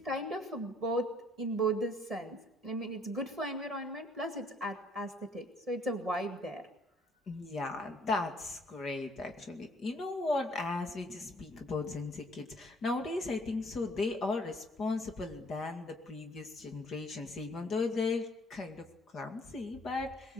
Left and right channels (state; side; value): normal; both; correlation 0.62